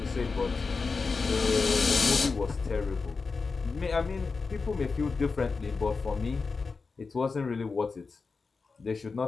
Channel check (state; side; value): quieter; right; 4.5 dB